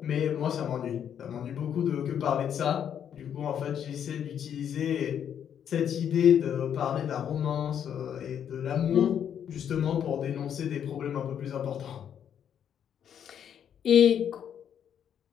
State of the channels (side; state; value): right; quieter; 8.9 dB